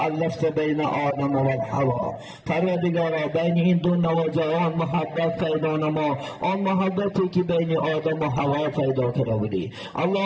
بین آدم و حوا. پروردگارا بین این دو نوجوان محبت پیدا نما، آن محبتی که بین آدم و حوا پیدا کرده بودی.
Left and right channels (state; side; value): identical; both; correlation 1.00